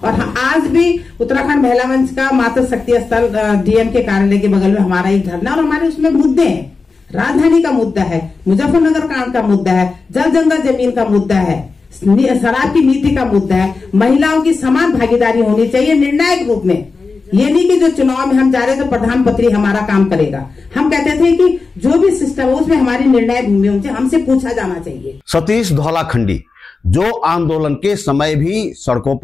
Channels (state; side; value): quieter; right; 4.3 dB